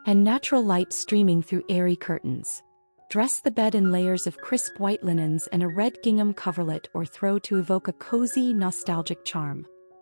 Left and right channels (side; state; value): both; inverted; correlation -1.00